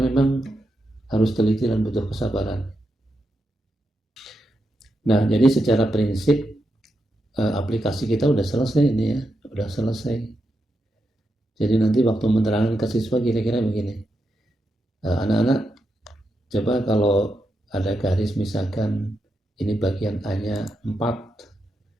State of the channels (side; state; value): both; normal; correlation 0.85